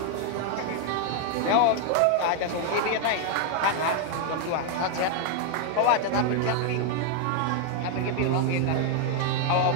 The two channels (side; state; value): both; different; correlation 0.00